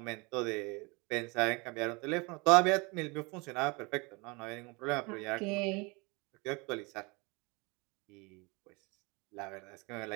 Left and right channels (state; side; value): quieter; left; 27.8 dB